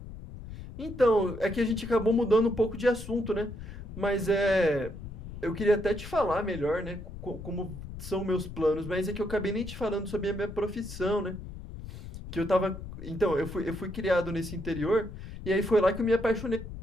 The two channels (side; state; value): left; noise; rumble, 11 dB below the sound